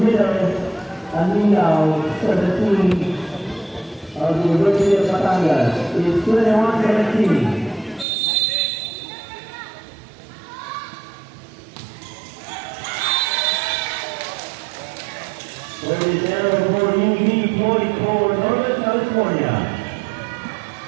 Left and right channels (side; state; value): left; drops out; at 8.1 s